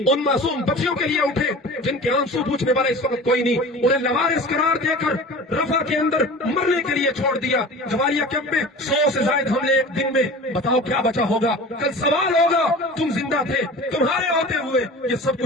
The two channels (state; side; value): normal; both; correlation 0.38